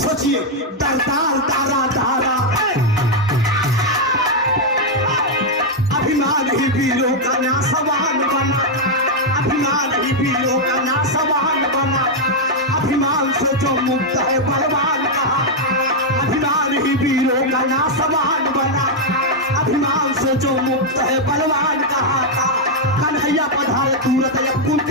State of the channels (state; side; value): normal; both; correlation -0.01